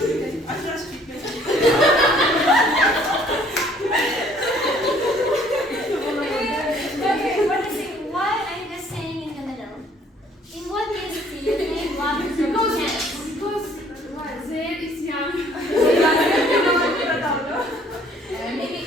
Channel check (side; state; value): both; normal; correlation 0.59